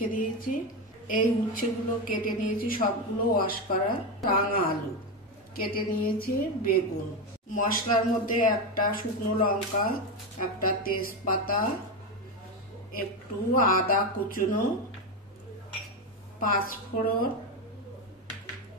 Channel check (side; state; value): both; normal; correlation 0.13